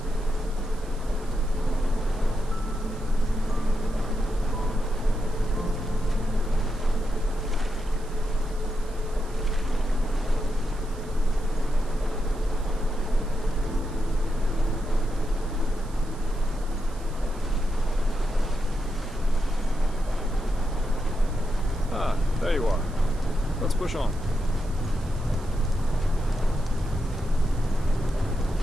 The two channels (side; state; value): right; noise; hiss, 22 dB below the sound